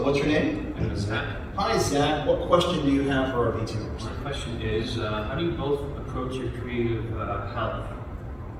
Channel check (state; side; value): identical; both; correlation 1.00